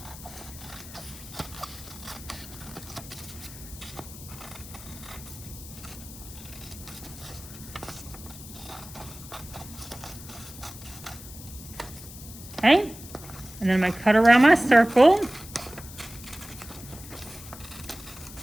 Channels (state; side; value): noise; left; hiss, 15 dB below the sound